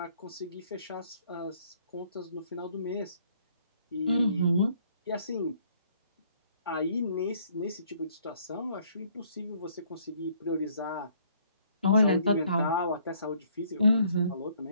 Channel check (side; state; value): both; inverted; correlation -0.64